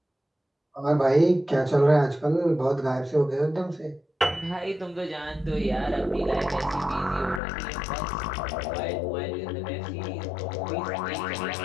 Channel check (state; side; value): drops out; right; at 7.4 s